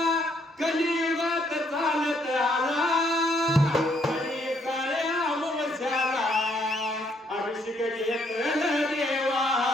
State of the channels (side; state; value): both; normal; correlation 0.70